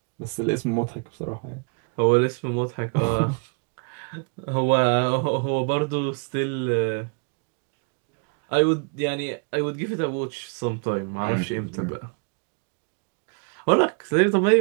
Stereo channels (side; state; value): left; quieter; 38.7 dB